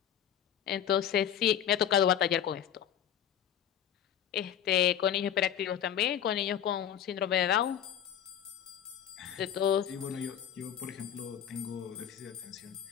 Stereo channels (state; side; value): quieter; right; 9.6 dB